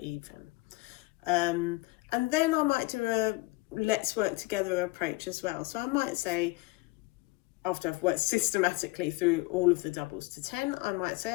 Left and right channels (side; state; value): right; quieter; 23.0 dB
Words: And then I might do a let's work together approach as well. So I might say, after I've worked systematically through all of the doubles to 10, I might